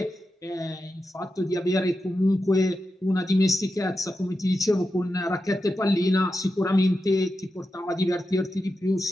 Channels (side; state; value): both; normal; correlation 0.89